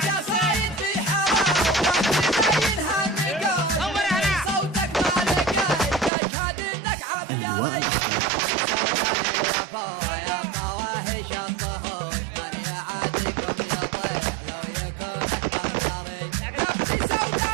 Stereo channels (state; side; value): drops out; left; at 6.1 s